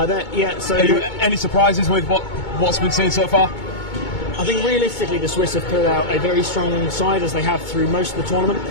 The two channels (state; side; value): late; right; 2.2 ms